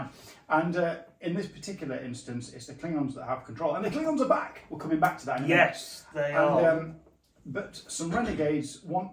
And in this particular instance, it's the Klingons that have control. And the Klingons are back. We're coming back to that in a minute. Yes, they are. But some renegades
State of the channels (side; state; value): both; identical; correlation 1.00